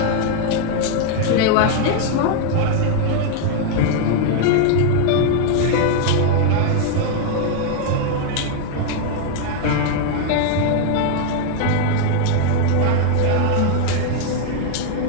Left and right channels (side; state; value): both; different; correlation 0.00